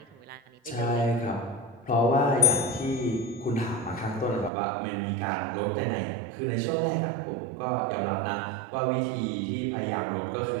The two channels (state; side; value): drops out; left; at 4.5 s